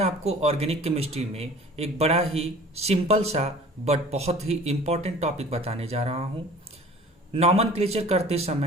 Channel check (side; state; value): both; normal; correlation 0.46